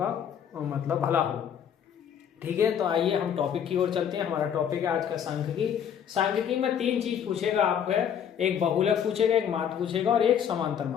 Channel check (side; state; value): right; quieter; 8.6 dB